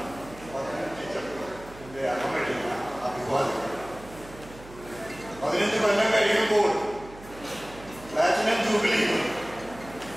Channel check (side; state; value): right; noise; hum, 18 dB below the sound